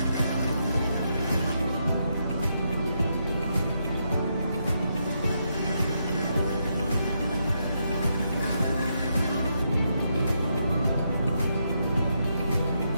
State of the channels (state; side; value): inverted; both; correlation -0.80